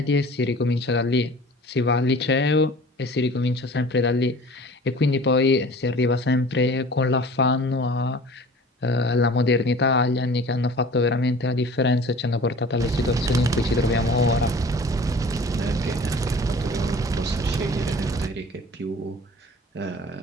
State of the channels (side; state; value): both; normal; correlation 0.44